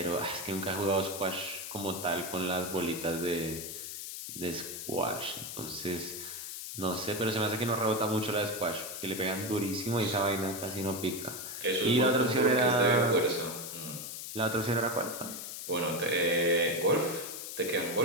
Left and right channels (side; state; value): left; noise; hiss, 8 dB below the sound